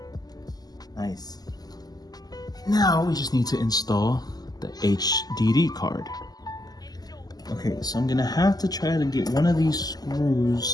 Nice. Now we just need to install the HDD card. Okay, so I'm gonna have to try to get one of these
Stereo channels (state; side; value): late; right; 0.19 ms